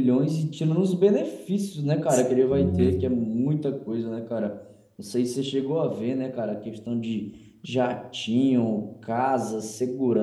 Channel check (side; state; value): both; identical; correlation 1.00